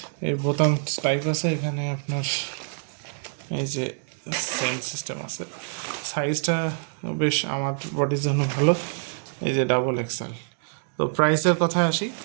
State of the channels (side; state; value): left; silent; digital silence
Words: এই বোতাম টাইপ আছে এখানে, আপনার এই যে সেম সিস্টেম আছে। সাইজটা বেশ আমার বডির জন্য ভালো। এই যে ডাবল এক্সেল। তো প্রাইসের কথায় আসি,